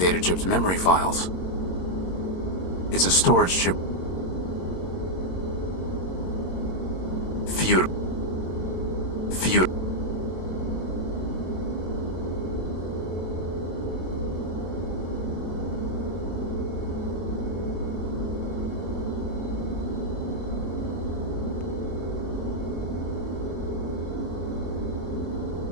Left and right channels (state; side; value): late; right; 22 ms